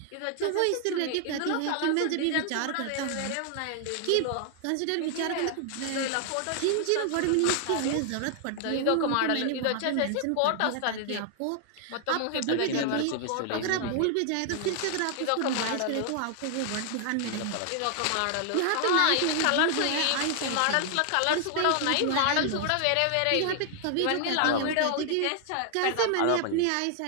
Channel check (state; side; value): different; both; correlation 0.00